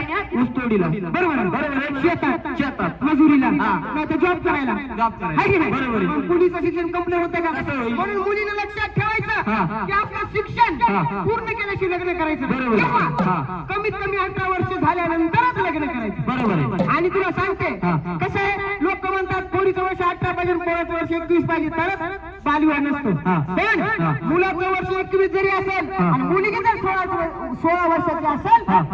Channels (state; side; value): identical; both; correlation 1.00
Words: ऊसतोडीला बरोबर आहे. बरोबर आहे. शेतात मजुरीला हा. नाही तर जॉब करायला जॉब करायला. आहे की नाही? बरोबर आहे. मग मुलीचं शिक्षण कंप्लीट होतं का कसं होईल? म्हणून मुलीने लक्षात हा. ठेवायचं की आपलं शिक्षण हा, हा. पूर्ण केल्याशिवाय लग्न करायचं नाही. बरोबर आहे. किंवा हा. कमीत कमी 18 वर्ष झाल्यानंतरच लग्न करायचं बरोबर आहे. आणि तुला सांगते हा, हा. कसं आहे लोक म्हणतात पोरीचं वर्ष 18 पाहिजे पोराचं वर्ष 21 पाहिजे तरच बालविवाह नसतो हा. पण हा. मुलाचं वर्ष 21 जरी असेल हा. आणि मुलगी जर 16 वर्षाची असेल हा.